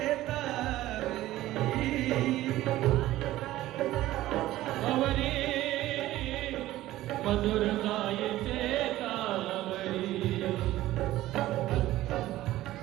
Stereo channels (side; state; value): left; quieter; 15.6 dB